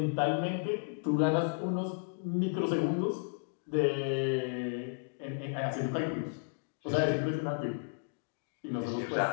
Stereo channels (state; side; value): silent; right; digital silence